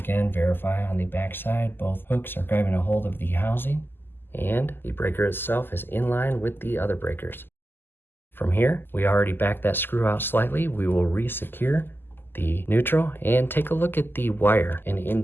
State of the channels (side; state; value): right; late; 0.098 ms